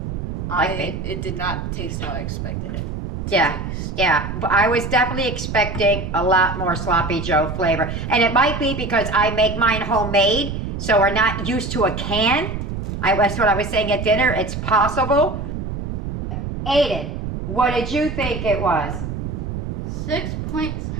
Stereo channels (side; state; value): right; noise; rumble, 5 dB below the sound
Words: It did not taste how I expected it. Yeah. But I was definitely expecting a lot more sloppy Joe flavor. And it might be because I make mine homemade, so we're not used to a can. That's what I was saying at dinner. It's possible. Aiden, what did you think it was? 6.7.